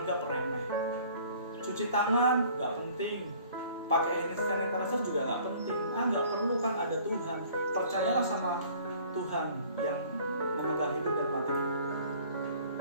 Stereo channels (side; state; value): both; inverted; correlation -0.52